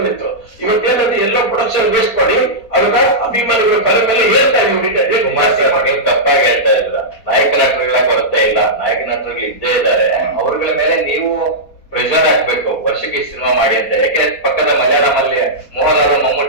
ಇವತ್ತೇನಂತ ಎಲ್ಲ ಪ್ರೊಡಕ್ಷನ್ ವೇಸ್ಟ್ ಮಾಡಿ ಅದನ್ನ ಅಭಿಮಾನಿಗಳ ತಲೆ ಮೇಲೆ ಹೇಳ್ತಾ ನೀವು ತಪ್ಪಾಗಿ ಹೇಳ್ತಾ ಇಲ್ಲ. ನಾಯಕ ನಟರುಗಳ ಕೊರತೆ ಇಲ್ಲ, ನಾಯಕ ನಟರುಗಳು ಇದ್ದೇ ಇದ್ದಾರೆ. ಅವ್ರಗಳ ಮೇಲೆ ನೀವು ಪ್ರೆಷರ್ ಹಾಕ್ಬೇಕು, ವರ್ಷಕ್ಕೆ ಸಿನಿಮಾ ಮಾಡಿ ಅಂತ. ಯಾಕೆ ಪಕ್ಕದ ಮಲಯಾಳಂ ಅಲ್ಲಿ ಮೋಹನ್ ಅವರು,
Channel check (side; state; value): right; late; 4.2 ms